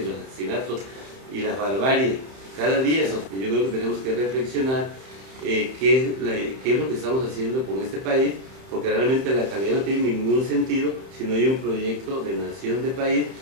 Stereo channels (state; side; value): late; left; 31 ms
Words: los asesinatos y la barbarie cada día. Y yo creo que tenemos que reflexionar qué es lo que estamos haciendo con este país, porque realmente la calidad no tiene ningún sentido si no hay un proyecto de nación, de país,